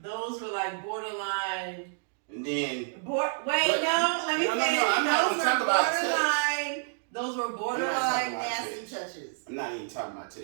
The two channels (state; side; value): silent; left; digital silence